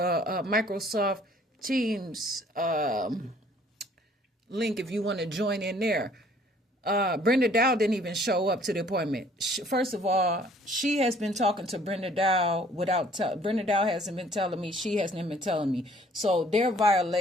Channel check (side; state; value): both; normal; correlation 0.58